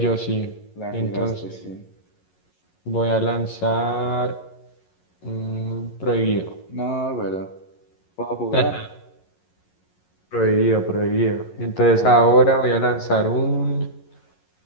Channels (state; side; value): late; right; 11 ms